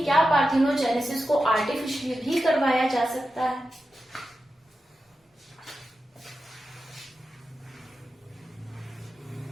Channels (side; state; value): both; normal; correlation 0.91